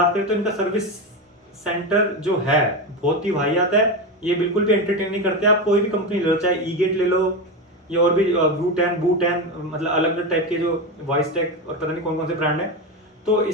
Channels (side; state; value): both; normal; correlation 0.17